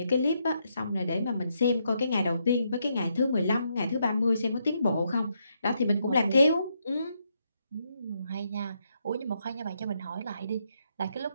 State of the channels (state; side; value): inverted; both; correlation -0.78